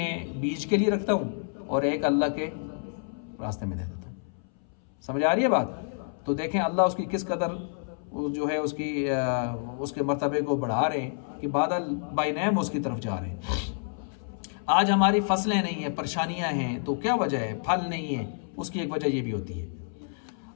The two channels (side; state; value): right; silent; 59 dB below the other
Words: बीज के लिए रखता हूँ, और एक अल्लाह के रास्ते में दे देता हूँ। समझ आ रही है बात? तो देखें अल्लाह उसकी किस कदर जो है उसके मर्तबे को बढ़ा रहे हैं कि बादल बाय नेम उसकी तरफ जा रहे हैं। आज हमारी फसलें नहीं है, परेशानियां हैं, तो क्या वजह है? फल नहीं है, उसकी एक वजह ये भी होती है।